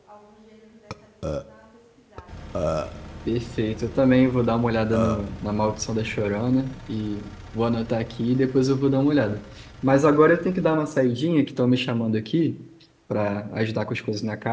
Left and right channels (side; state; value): both; identical; correlation 1.00